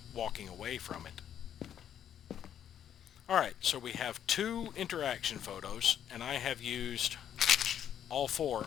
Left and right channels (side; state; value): right; quieter; 9.7 dB